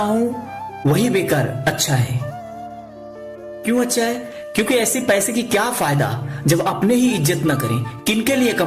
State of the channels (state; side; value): identical; both; correlation 1.00